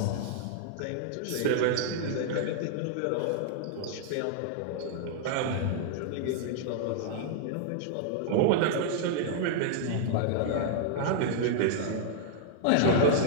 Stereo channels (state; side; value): different; both; correlation -0.01